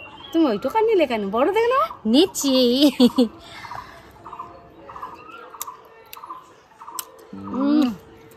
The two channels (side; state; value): both; identical; correlation 1.00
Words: তুমি ওইটুকা নিলে কেন? বড় দেখে না নিচ্ছি।